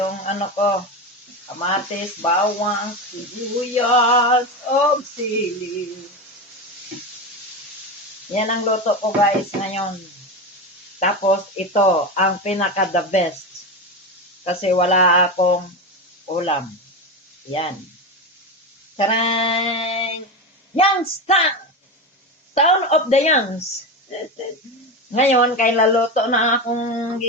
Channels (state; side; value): normal; both; correlation 0.19